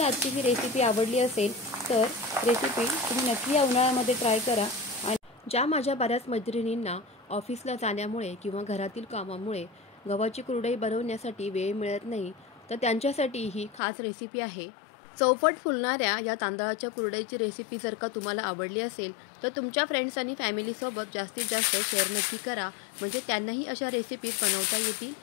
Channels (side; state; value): right; drops out; at 13.8 s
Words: आजची ही रेसिपी आवडली असेल तर रेसिपी तुम्ही नक्की या उन्हाळ्यामध्ये ट्राय करा। आणि ज्या माझ्या बऱ्याच मैत्रिणींना ऑफिसला जाण्यामुळे किंवा घरातील कामामुळे गव्हाची कुरडई बनवण्यासाठी वेळ मिळत नाही, तर त्यांच्यासाठी ही खास रेसिपी आहे। चौपट फुलणाऱ्या या तांदळाच्या कुरडईची रेसिपी जर का तुम्हाला आवडली असेल तर तुमच्या फ्रेंड्स आणि फॅमिलीसोबत जास्तीत जास्त शेअर नक्की करा, म्हणजे त्यांनाही अशा रेसिपी बनवता येतील।